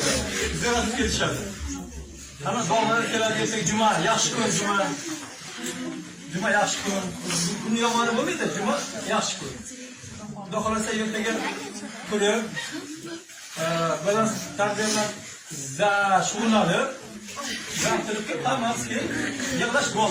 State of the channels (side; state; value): both; identical; correlation 1.00